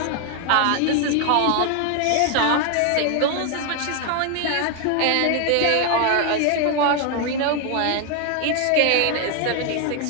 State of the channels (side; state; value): both; different; correlation 0.00